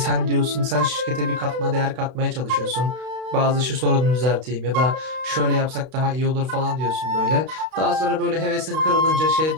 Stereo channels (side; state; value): left; late; 32 ms